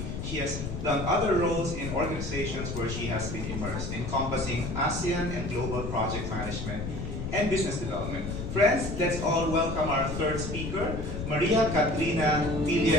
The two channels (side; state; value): left; noise; rumble, 5 dB below the sound